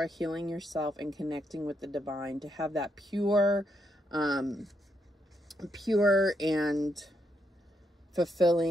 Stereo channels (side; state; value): both; normal; correlation 0.79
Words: healing yourself and connecting with the divine to have that pure and